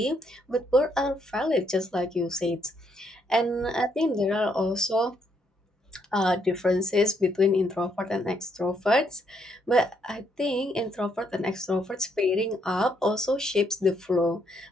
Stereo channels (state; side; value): normal; both; correlation 0.73